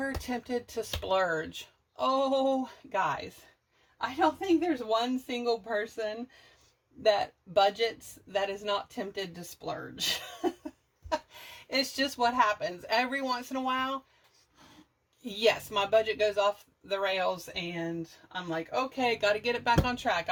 tempted to splurge? Oh, guys, I don't think there's one single person that budgets that is not tempted to splurge. It's just what happens. Every once in a while, yes, my budget goes off the rails and I'm like, okay, got to get it back on track.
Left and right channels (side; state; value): both; identical; correlation 1.00